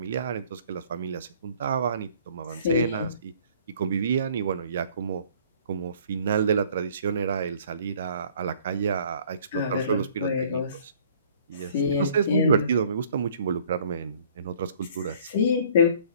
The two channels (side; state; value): both; inverted; correlation -0.56